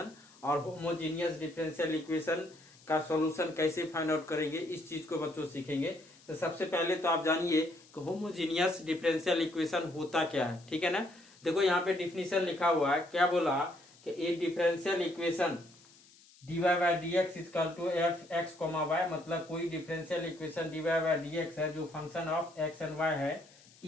और होमोजीनियस डिफरेंशियल इक्वेशन का सॉल्यूशन कैसे फाइंड आउट करेंगे, इस चीज को बच्चों सीखेंगे। तो सबसे पहले तो आप जानिए कि होमोजीनियस डिफरेंशियल इक्वेशन होता क्या है। ठीक है ना। देखो यहाँ पे डिफिनीशन लिखा हुआ है, क्या बोला कि a differential equation dy by dx equal to f x comma y, मतलब कोई differential equation dy by dx है जो function of x and y है,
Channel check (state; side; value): noise; left; hiss, 26 dB below the sound